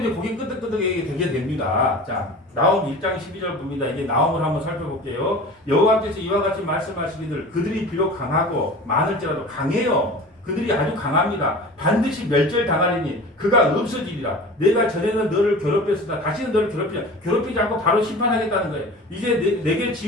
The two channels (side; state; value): both; normal; correlation 0.38